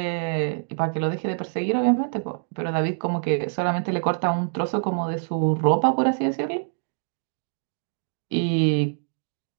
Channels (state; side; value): silent; left; digital silence